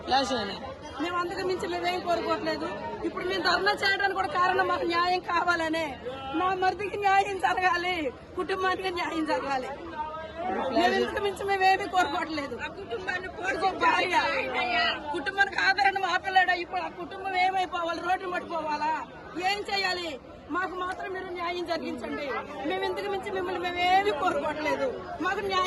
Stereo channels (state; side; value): identical; both; correlation 1.00